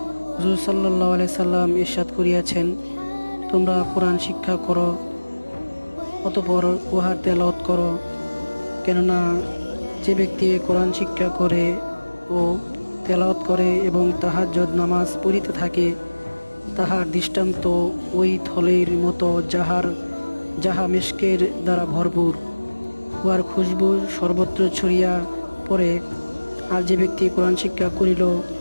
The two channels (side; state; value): both; inverted; correlation -1.00